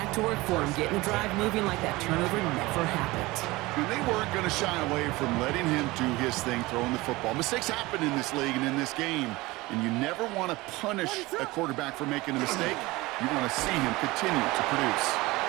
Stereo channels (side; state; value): left; quieter; 20.9 dB